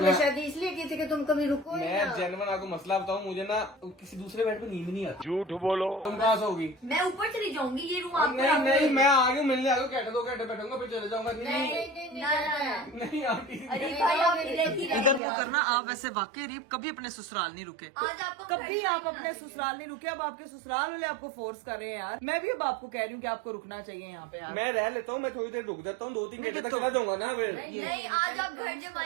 शादी इसलिए की थी कि तुम कभी रुको ही मैं ना। जेन्युइन आपको मसला बताऊँ, मुझे ना किसी दूसरे बेड पे नींद नहीं आती। झूठ बोलो। तुम कहाँ सोगी? मैं ऊपर चली जाऊंगी, ये रूम आपको नहीं नहीं, मैं आ गया मिलने आ गया, घंटे 2 घंटे बैठूंगा फिर चले जाऊंगा। नहीं आती। अरे भाई आप इधर ही इधर मुंह करना। आप वैसे वाकई अरीब कभी अपने ससुराल नहीं रुके, आज आपको कभी आप अपने ससुराल नहीं रुके। अब आपके ससुराल वाले आपको फोर्स कर रहे हैं यार। मैं भी अब आपको कह रही हूँ कि आपको रुकना चाहिए यहाँ पे यार। मैं रह लेता हूँ, मैं थोड़ी देर रुक जाता हूँ, 2-3 घंटे तक चला जाऊंगा ना फिर। नहीं, आज आप घर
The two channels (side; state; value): left; drops out; at 15.2 s